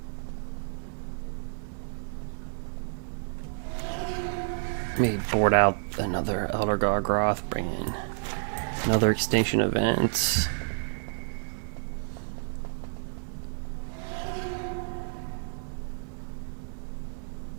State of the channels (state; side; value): silent; left; 58 dB below the other